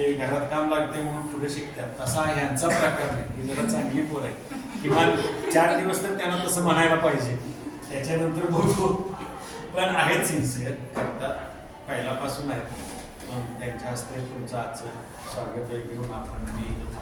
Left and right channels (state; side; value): identical; both; correlation 1.00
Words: घरात काम लागते म्हणून पुढे शिकतात, तसा ह्यांचा प्रकार नाही. ही जरा चांगली पोर आहे. किमान 4 दिवस तर त्यांना तसं म्हणायला पाहिजे, त्याच्यानंतर बघू. पण आहेत सिन्सिअर, करतात, पहिल्यापासून आहेत. त्यांच्या हस्ते तुमचं आजचं स्वागत घेऊन आपण मी